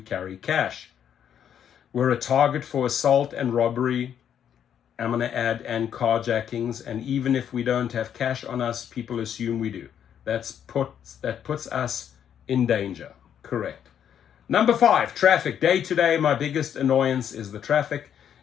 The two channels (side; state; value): right; quieter; 9.1 dB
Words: cash. We're a target for assault and robbery, I'm going to add, and carjackings. And even if we don't have cash on us, people assume we do. That puts us in danger. Correct. Number 5, traffic. Day to day, my biggest annoyance is the traffic.